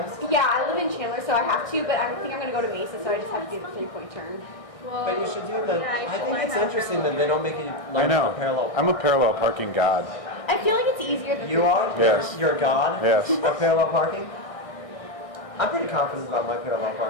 Yeah, I live in Chandler, so I have to, but I think I'm going to go to Mesa, so I just have to do the 3-point turn. Well, But you should do the... yeah, I think it's interesting that they don't make you learn I know. the parallel. I'm a parallel parking god. I feel like it's easier than You are? Yes. You're a god? Yes. Of parallel parking? I'm pretty confident about my parallel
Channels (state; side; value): late; right; 1.6 ms